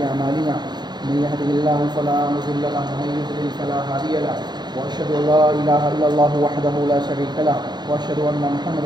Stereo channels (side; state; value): left; late; 0.21 ms